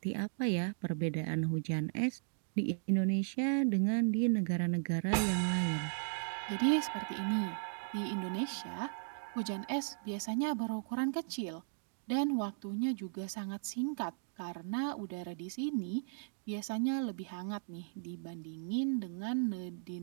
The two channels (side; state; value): left; silent; digital silence